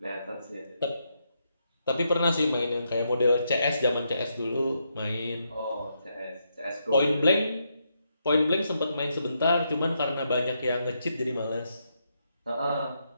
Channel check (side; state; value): both; inverted; correlation -0.80